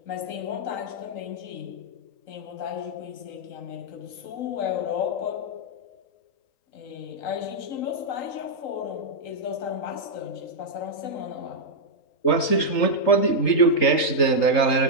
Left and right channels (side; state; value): right; late; 3.8 ms